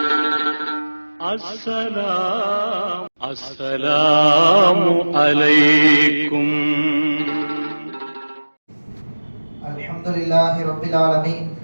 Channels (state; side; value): inverted; both; correlation -1.00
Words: அஸ்ஸலாமு அலைக்கும். அல்ஹம்துலில்லாஹி ரப்பில் ஆலமீன்